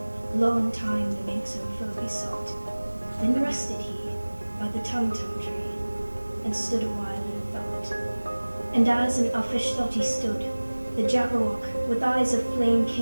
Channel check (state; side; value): inverted; both; correlation -1.00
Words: long time the mink's own foe he sought. Then rested he by the tum-tum tree, and stood a while in thought. And as in uffish thought he stood, the jabberwock with eyes of flame